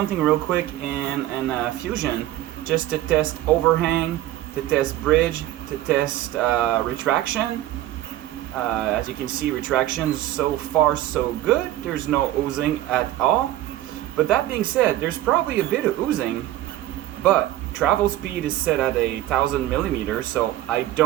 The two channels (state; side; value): quieter; left; 14.5 dB